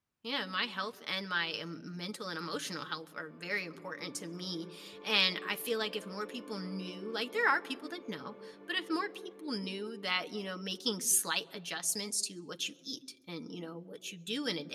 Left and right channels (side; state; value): both; identical; correlation 1.00